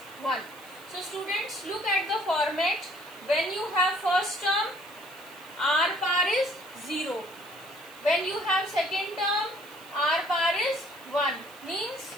1. So students, look at the format. When you have first term, R power is 0. When you have second term, R power is 1. Means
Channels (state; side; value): noise; right; hiss, 23 dB below the sound